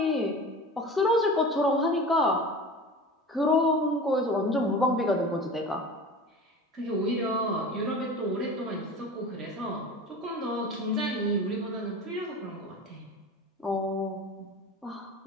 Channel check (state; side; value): normal; both; correlation 0.35